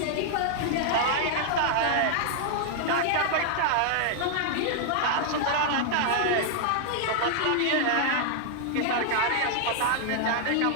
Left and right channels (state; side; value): different; both; correlation 0.00